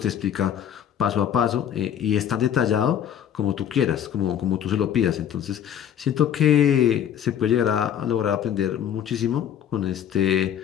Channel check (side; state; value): right; quieter; 9.6 dB